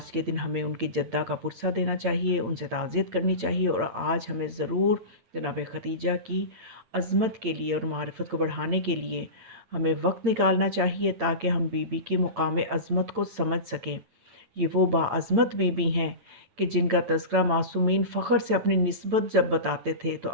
के दिन हमें उनकी जद्दा का पुरसा देना चाहिए, उनसे ताज़ियत करनी चाहिए, और आज हमें ज़रूर जनाब खदीजा की अज़मत के लिए और मारिफ़त को बढ़ाने के लिए हमें वक्त निकालना चाहिए, ताकि हम बीबी के मुकाम अज़मत को समझ सकें। ये वो बाअज़मत बीबी हैं कि जिनका तज़किरा मासूमीन फ़ख्र से अपनी निस्बत जब बताते थे तो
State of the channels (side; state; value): left; late; 8.8 ms